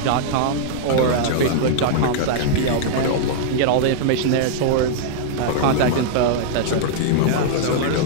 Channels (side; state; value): both; different; correlation -0.01